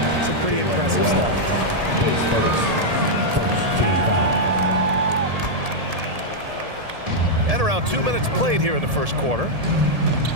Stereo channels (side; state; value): left; late; 1.7 ms